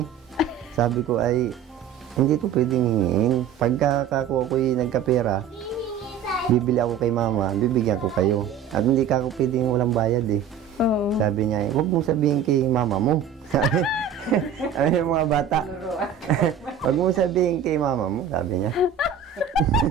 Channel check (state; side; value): quieter; left; 7.7 dB